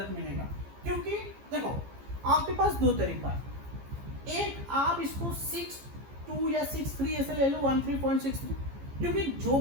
मिलेगा, क्योंकि देखो आपके पास 2 तरीका है, एक आप इसको 62 या 63 ऐसे ले लो, 13.63, क्योंकि जो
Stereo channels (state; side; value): late; left; 15 ms